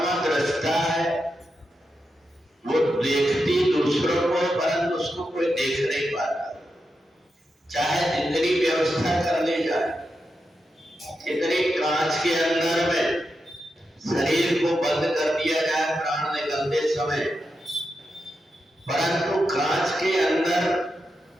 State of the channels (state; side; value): normal; both; correlation 0.87